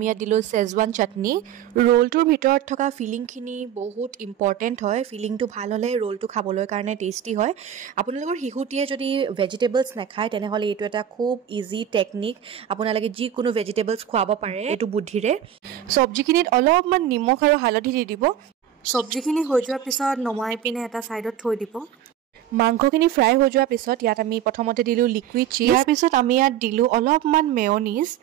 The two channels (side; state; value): left; quieter; 10.2 dB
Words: ইয়াত দিলোঁ চেজৱান চাটনি। ৰোলটোৰ ভিতৰত থকা ফিলিংখিনি বহুত ইম্পৰ্টেণ্ট হয়, ফিলিংটো ভাল হ'লে ৰোলটো খাবলৈ কাৰণে টেষ্টি হয়। আপোনালোকৰ শিশুটিয়ে যদি ভেজিটেবলছ নাখায় তেনেহ'লে এইটো এটা খুব ইজি টেকনিক, আপোনালোকে যিকোনো ভেজিটেবলছ খুৱাব পাৰে এইটো বুদ্ধিৰে। চব্জিখিনিত অলপমান নিমখ আৰু হালধি দি দিব। চব্জিখিনি হৈ যোৱাৰ পিছত নমাই পিনে এটা ছাইডত থৈ দিব। মাংসখিনি ফ্ৰাই হৈ যোৱাৰ পিছত ইয়াত আমি প্ৰথমতে দিলোঁ লিকুইড চিজ। ইয়াৰ পিছত আমি ইয়াত দিলোঁ অলপমান মেয়নিজ।